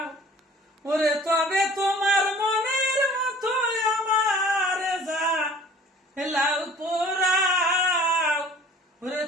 ওরে তবে তোমার মনের মতো আমার যা লাউ পোড়াও, ওরে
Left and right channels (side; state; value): both; normal; correlation 0.49